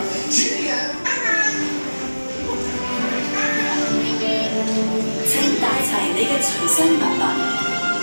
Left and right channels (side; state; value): both; inverted; correlation -1.00